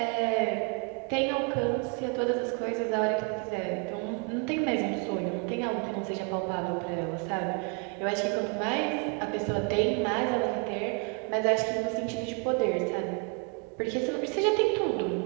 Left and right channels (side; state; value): left; quieter; 35.4 dB